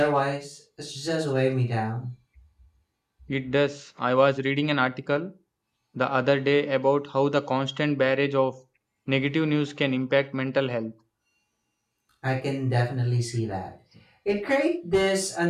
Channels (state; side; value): identical; both; correlation 1.00